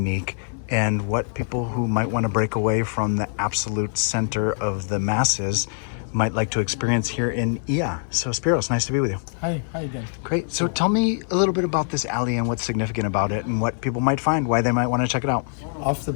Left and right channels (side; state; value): right; silent; 63 dB below the other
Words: and what people who might want to break away from the absolute center of the masses might like to experience here in Oia. So Spiros, nice to be with you. Hi again. Great. So tell me a little bit about this alley and what's significant about it and what people might find, why they might want to check it out. Off the